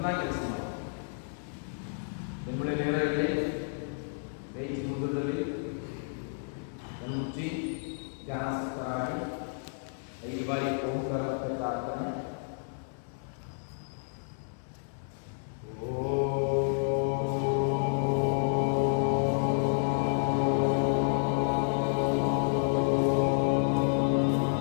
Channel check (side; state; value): right; silent; digital silence